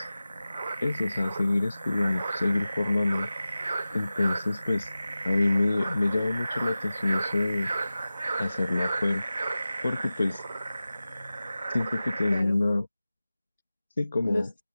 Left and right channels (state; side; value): inverted; both; correlation -0.95